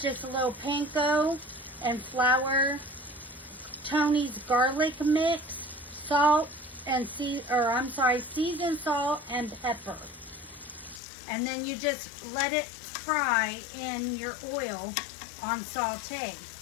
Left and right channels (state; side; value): drops out; right; at 11.0 s